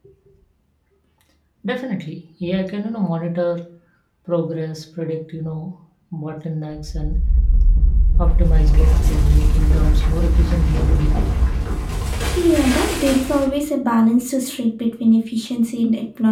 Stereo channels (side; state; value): both; identical; correlation 1.00